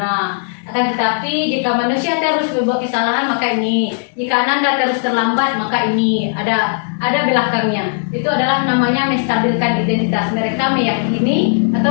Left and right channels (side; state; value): right; silent; 69 dB below the other